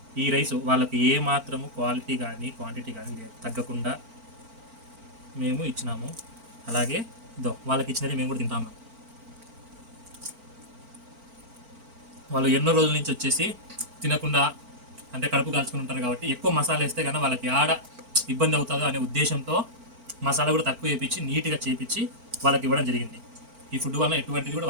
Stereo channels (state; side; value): late; left; 4.4 ms